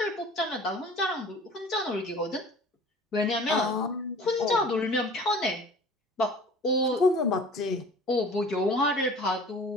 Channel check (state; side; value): normal; both; correlation 0.45